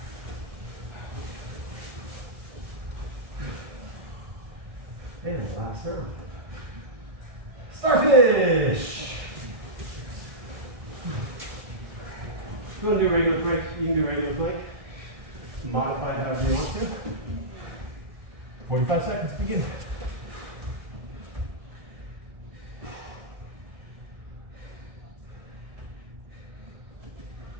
And the last round. Starfish! If you want to do regular plank, you can do regular plank. Modify it however you want to. 45 seconds, begin.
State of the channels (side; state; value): left; late; 1.6 ms